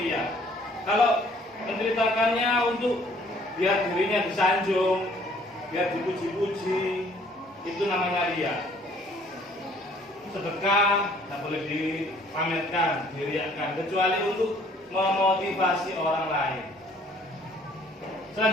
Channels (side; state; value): both; normal; correlation 0.59